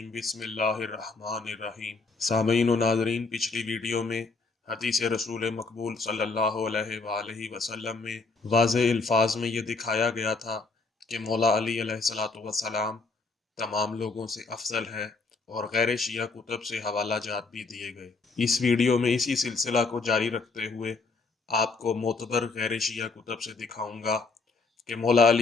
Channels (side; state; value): right; quieter; 4.0 dB